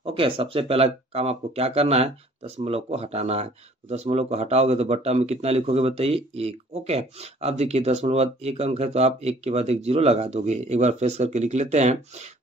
ओके, सबसे पहला काम आपको क्या करना है, दशमलव को हटाना है। तो दशमलव को हटाओगे तो बट्टा में कितना लिखोगे बताइए, 1। ओके, अब देखिए दशमलव बाद 1 अंक है तो आप 1 के बाद 1 जीरो लगा दोगे। एक बार फ्रेश करके लिख लेते हैं।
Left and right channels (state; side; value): normal; both; correlation 0.55